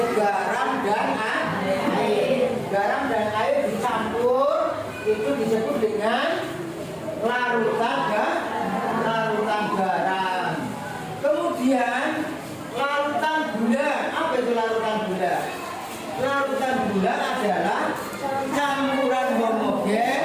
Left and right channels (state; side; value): identical; both; correlation 1.00